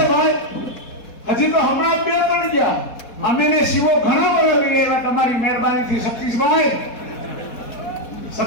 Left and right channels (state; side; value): late; right; 4.1 ms